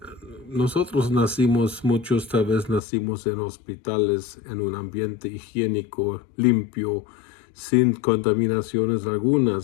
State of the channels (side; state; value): right; drops out; at 2.8 s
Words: muchos tal vez nacimos en hospitales, en un ambiente higiénico, limpio, sin contaminaciones